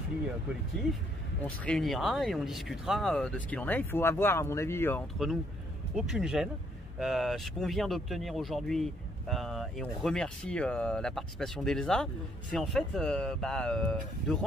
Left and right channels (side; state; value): both; normal; correlation 0.69